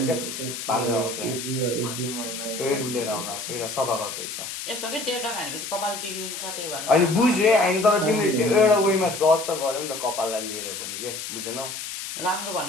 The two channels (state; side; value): noise; left; hiss, 7 dB below the sound